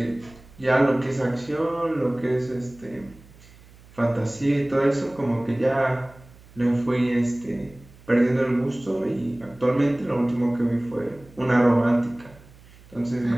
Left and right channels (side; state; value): right; noise; hum, 24 dB below the sound